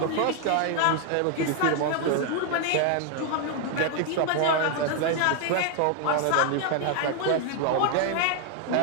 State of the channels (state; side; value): different; both; correlation 0.01